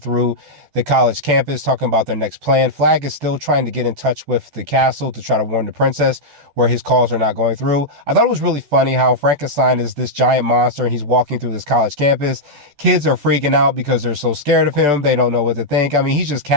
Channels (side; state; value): left; late; 14 ms